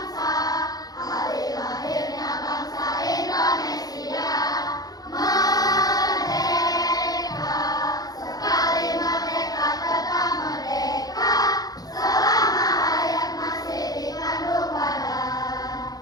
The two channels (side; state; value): right; late; 0.18 ms